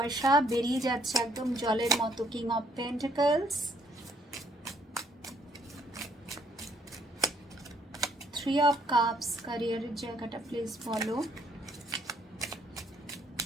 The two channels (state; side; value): normal; both; correlation 0.68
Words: বেরিয়ে যাচ্ছে একদম জলের মতো। King of pentacles, 3 of cups. ক্যারিয়ারের জায়গাটা প্লিজ বলো,